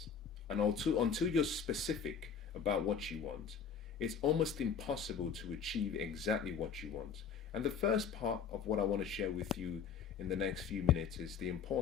and until you're specific about what you want, it's almost impossible to achieve exactly what you want. And the first part of what I want to share with you in the next few minutes is the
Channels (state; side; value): quieter; right; 6.8 dB